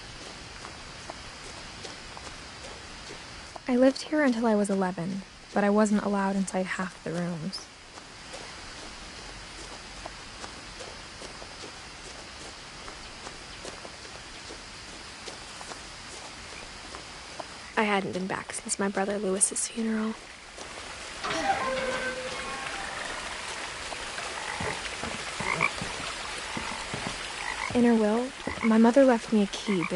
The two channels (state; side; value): identical; both; correlation 1.00